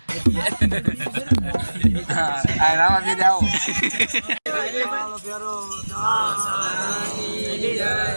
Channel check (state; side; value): inverted; both; correlation -1.00